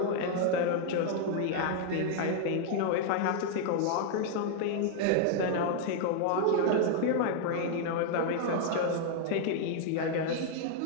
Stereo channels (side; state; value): both; different; correlation 0.00